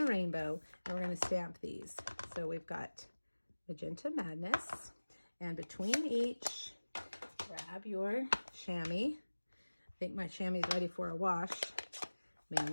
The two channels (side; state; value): both; inverted; correlation -1.00